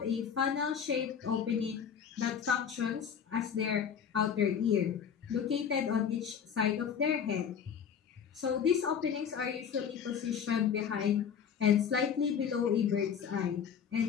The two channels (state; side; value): quieter; right; 7.6 dB